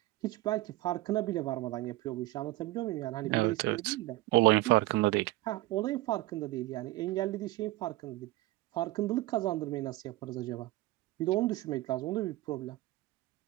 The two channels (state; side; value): quieter; left; 18.4 dB